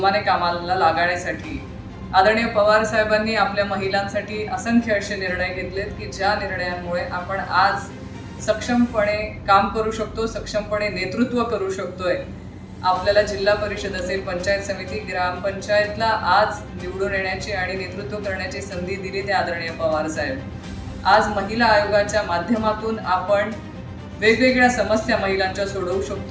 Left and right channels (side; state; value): both; identical; correlation 1.00